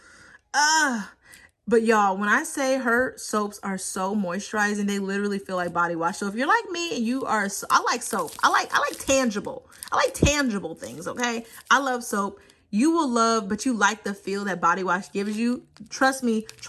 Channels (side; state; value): both; identical; correlation 1.00